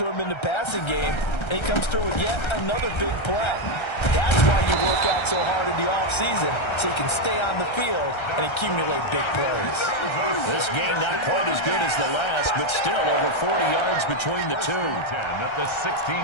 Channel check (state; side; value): late; right; 1.3 ms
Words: him in the passing game, and he comes through with yet another big play. That's why you work out so hard in the offseason, so you can stay on the field and accumulate big plays. This game not quite as good as the last, but still over 40 yards between the two. 10 at the